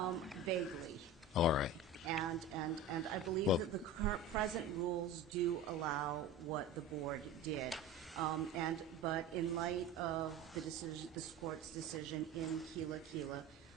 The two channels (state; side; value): quieter; left; 3.4 dB